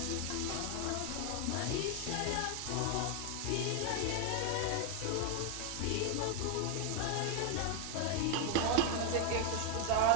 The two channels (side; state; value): both; different; correlation 0.01